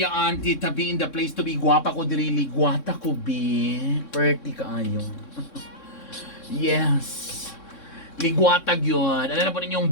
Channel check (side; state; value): right; late; 3.6 ms